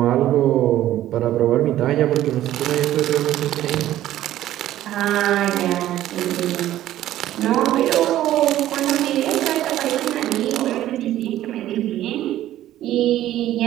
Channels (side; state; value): left; quieter; 13.4 dB